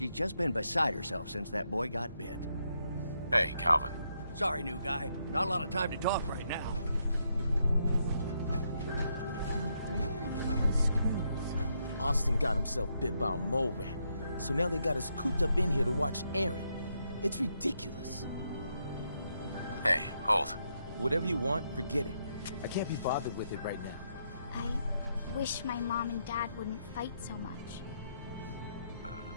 just been beside herself since that boy got bit. Hey, Calvin. Sorry, new guy. Not a lot of time to talk right now. Austin got himself bit by a mole rat, so now they got us cooped up in here to watch Aaron. It's ridiculous. Hey, hold. Whatever you want, forget it. I can't be bothered with it right now. I wish my mom and dad wouldn't fight so much.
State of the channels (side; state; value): both; inverted; correlation -0.79